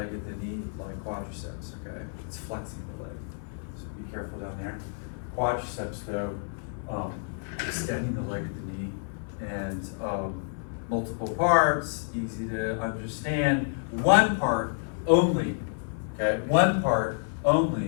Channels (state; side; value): silent; right; 55 dB below the other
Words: at the knee like quadriceps. Okay, it's flexing the leg. So be careful down there. Quadriceps, though, extending the leg at the knee, and multiple parts, easy to understand. One part only, okay? One part